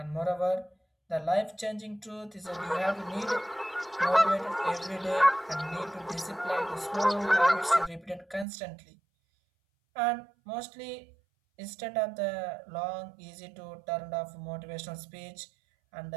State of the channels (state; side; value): drops out; left; at 8.5 s